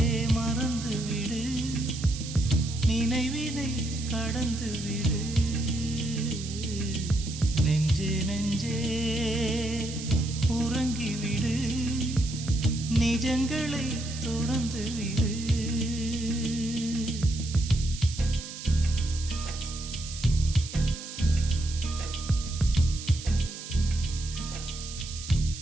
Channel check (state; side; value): noise; right; hiss, 11 dB below the sound